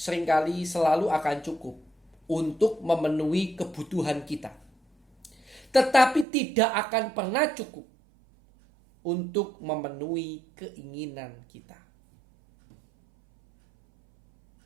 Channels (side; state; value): left; drops out; at 6.2 s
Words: selalu akan cukup untuk memenuhi kebutuhan kita. Tetapi tidak akan pernah cukup untuk memenuhi keinginan kita.